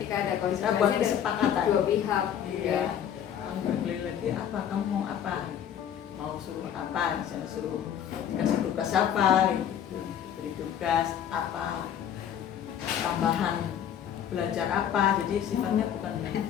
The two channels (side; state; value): right; quieter; 9.4 dB